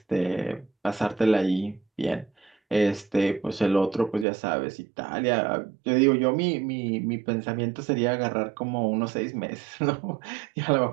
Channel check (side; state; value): left; drops out; at 4.2 s